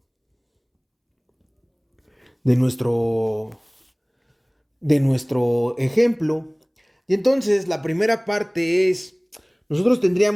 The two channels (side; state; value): both; identical; correlation 1.00